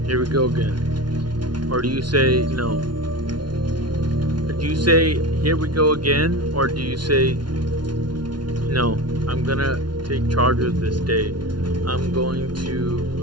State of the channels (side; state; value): left; late; 0.70 ms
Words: "Here we go again," or do you say no? Do you say, "Here we go again," or do you say, "No, I'm gonna take charge of this day. I'm